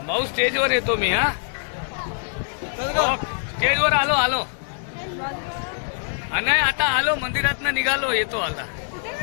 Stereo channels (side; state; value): right; silent; digital silence